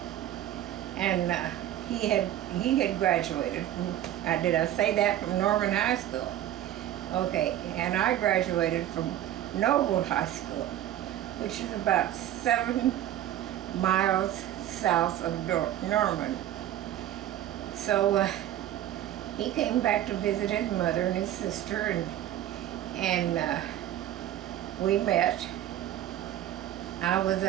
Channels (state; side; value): quieter; left; 12.4 dB